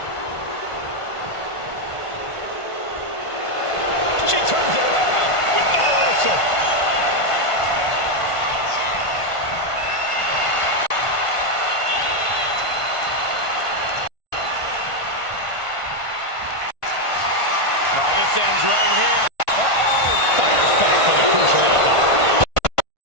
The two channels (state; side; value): late; right; 1.5 ms